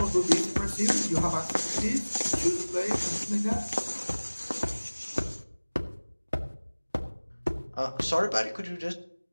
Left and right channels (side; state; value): both; inverted; correlation -1.00